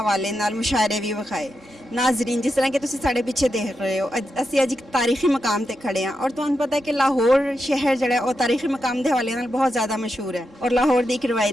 ਨਾਲ ਮੁਸ਼ਾਇਰੇ ਵੀ ਵਿਖਾਏ। ਨਾਜ਼ਰੀਨ, ਜਿਸ ਤਰ੍ਹਾਂ ਕਿ ਤੁਸੀਂ ਸਾਡੇ ਪਿੱਛੇ ਦੇਖ ਰਹੇ ਹੋ, ਅਸੀਂ ਅੱਜ ਇੱਕ ਤਾਰੀਖੀ ਮਕਾਮ ਤੇ ਖੜੇ ਹਾਂ ਔਰ ਤੁਹਾਨੂੰ ਪਤਾ ਹੈ ਕਿ ਲਾਹੌਰ ਸ਼ਹਿਰ ਜਿਹੜਾ ਉਹ ਤਾਰੀਖੀ ਮਕਾਮ ਦੇ ਹਵਾਲੇ ਨਾਲ ਬਹੁਤ ਜ਼ਿਆਦਾ ਮਸ਼ਹੂਰ ਹੈ ਔਰ ਲਾਹੌਰ ਦੀ ਇੱਕ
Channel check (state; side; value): normal; both; correlation 0.87